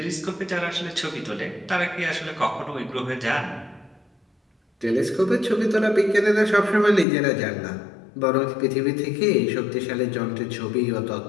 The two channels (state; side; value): drops out; right; at 7.1 s